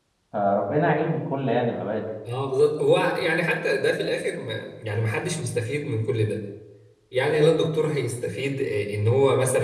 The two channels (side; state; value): both; identical; correlation 1.00